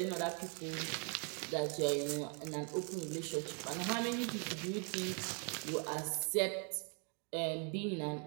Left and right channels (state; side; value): quieter; left; 39.3 dB